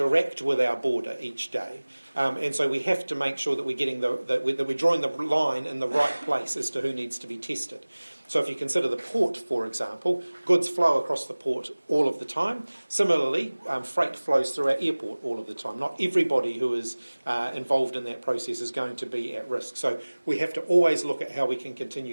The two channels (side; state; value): both; inverted; correlation -1.00